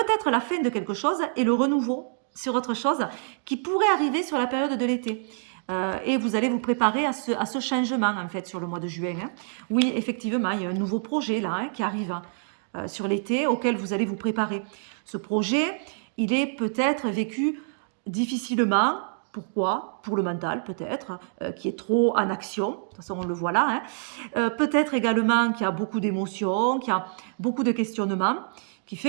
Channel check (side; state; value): left; silent; digital silence